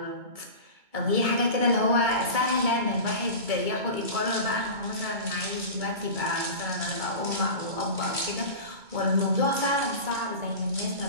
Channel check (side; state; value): left; late; 2.2 ms